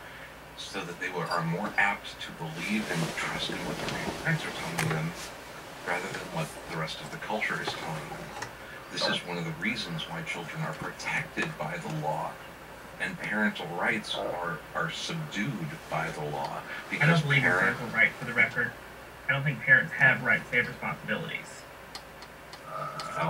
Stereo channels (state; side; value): identical; both; correlation 1.00